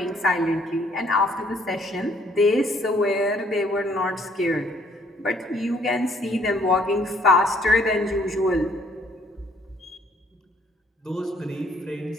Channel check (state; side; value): normal; both; correlation 0.63